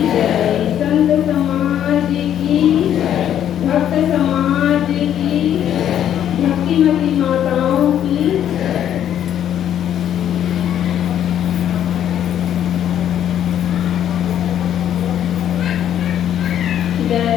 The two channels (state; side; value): quieter; right; 10.4 dB